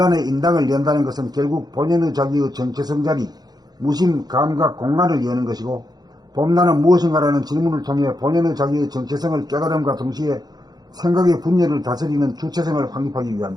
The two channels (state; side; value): late; left; 0.19 ms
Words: 인당을 연다는 것은 결국 본연의 자기의 정체성 자리, 무심, 감각, 공간을 여는 것이고 봄나는 무엇인가라는 질문을 통해 본연의 자기의 정체성을 깨달음과 동시에 생각의 분열을 다스리는 주체성을 확립하기